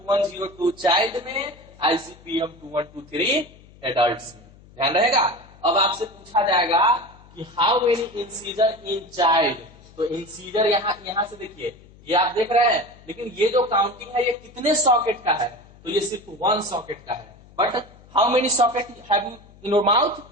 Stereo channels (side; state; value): left; noise; hum, 24 dB below the sound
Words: चाइल्ड में, आईसीपीएम 2123 एडल्ट्स में। ध्यान रहेगा। अब आपसे पूछा जाएगा कि how many incisor in child. तो इंसीजर यहां से देखिए, ये आप देख रहे हैं, लेकिन ये जो काउंटिंग है ये कितने सॉकेट का है, तो ये सिर्फ 1 सॉकेट का है। But how many socket have you in your mouth,